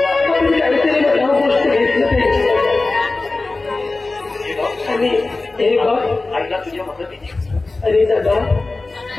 काहीतरी मला गोष्ट घेतलं पाहिजे. आणि हे बघ, आईला तुझ्या मदतीची. अरे दादा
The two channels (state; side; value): quieter; right; 3.4 dB